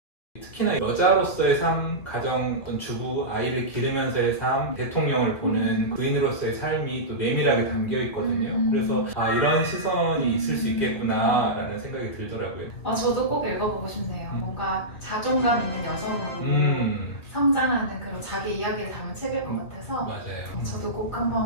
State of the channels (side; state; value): right; late; 2.3 ms